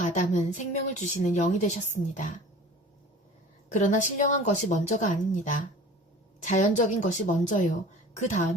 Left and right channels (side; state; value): both; normal; correlation 0.42